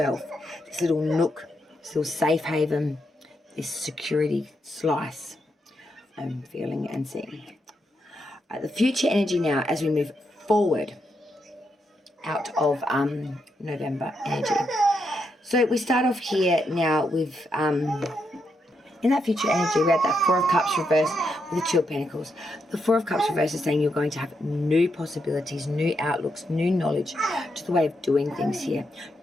this little nook, this little safe haven, this security slice. I'm feeling and seeing. The future energy now as we move forward out of November energy. So we start off here now with, in that future energy, we had that Four of Cups reversed with the Two of Pentacles. The Four of Cups reversed is saying you're going to have new possibilities, new outlooks, new knowledge to the way of doing things here,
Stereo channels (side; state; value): both; normal; correlation 0.82